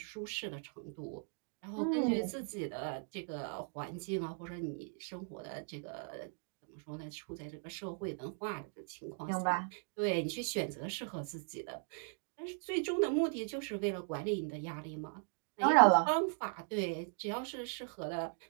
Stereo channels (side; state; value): left; silent; 52 dB below the other